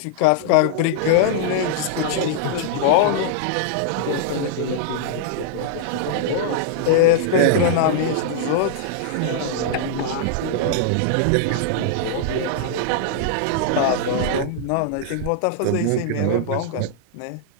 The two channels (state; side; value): different; both; correlation -0.01